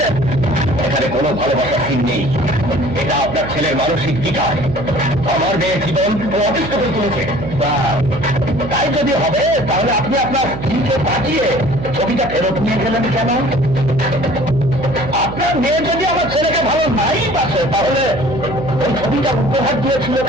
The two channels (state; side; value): noise; right; hum, 8 dB below the sound